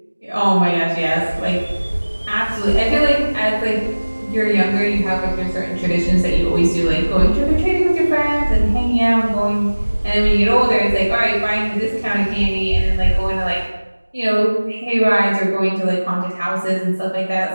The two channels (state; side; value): inverted; both; correlation -1.00